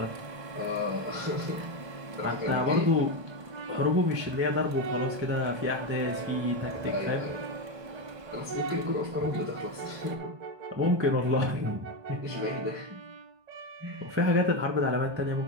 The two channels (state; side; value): late; left; 1.3 ms